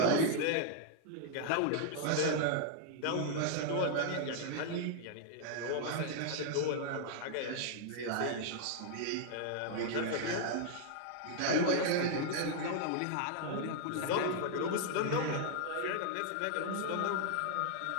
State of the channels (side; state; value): both; different; correlation 0.00